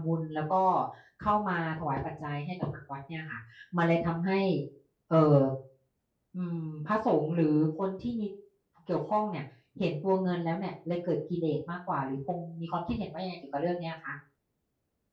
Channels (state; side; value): identical; both; correlation 1.00